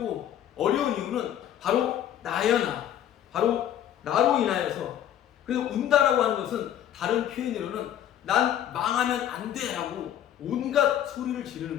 어려운 이유는 바로 나여 나 바로 나로 인하여서 그래서 운다라고 하는 것은 다른 표현으로는 난 망하면 안 돼 라고 온갖 소리를 지르는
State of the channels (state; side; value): quieter; right; 10.9 dB